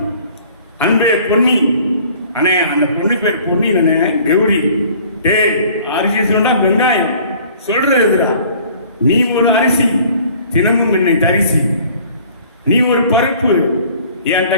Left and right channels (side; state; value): both; inverted; correlation -0.52